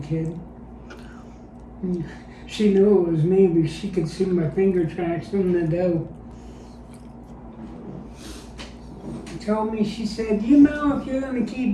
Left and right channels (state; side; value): identical; both; correlation 1.00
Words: kid. And she knew it was me because she could see my finger tracks in the dough. She told me, she said, you know, if you're going to